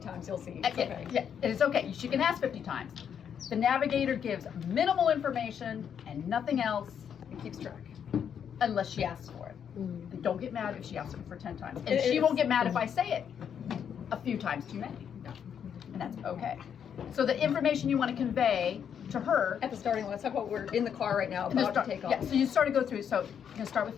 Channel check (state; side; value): quieter; right; 8.1 dB